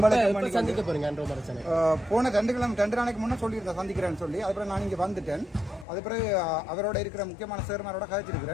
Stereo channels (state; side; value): drops out; right; at 5.9 s